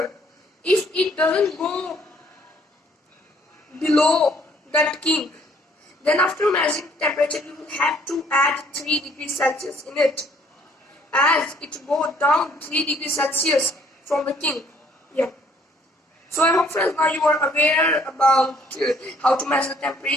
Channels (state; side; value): normal; both; correlation 0.62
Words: If it doesn't go below that kink, then after measuring temperature you will have to add 3 degrees Celsius in it, as it goes down 3 degrees Celsius from the kink. Yeah. So I hope friends now you are aware about how to measure